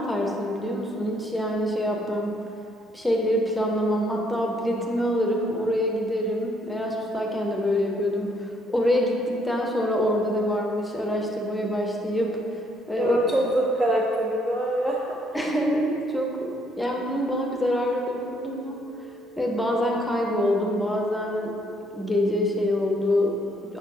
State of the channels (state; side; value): normal; both; correlation 0.68